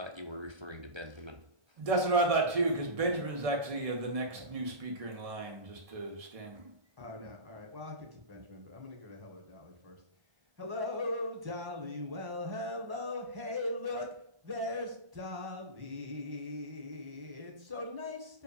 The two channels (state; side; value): late; left; 1.7 ms